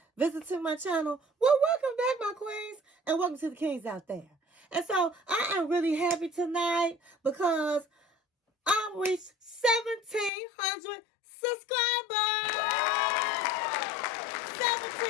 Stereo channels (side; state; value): right; drops out; at 10.3 s